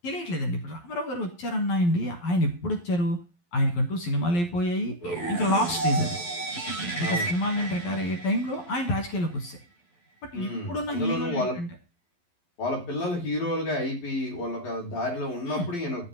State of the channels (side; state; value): right; late; 11 ms